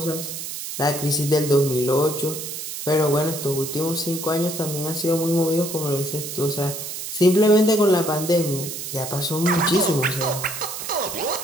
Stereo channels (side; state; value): right; noise; hiss, 7 dB below the sound